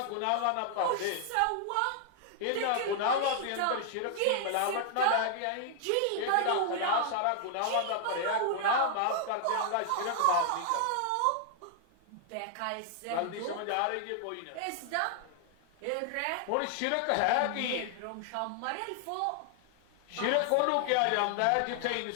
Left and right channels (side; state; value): both; different; correlation 0.00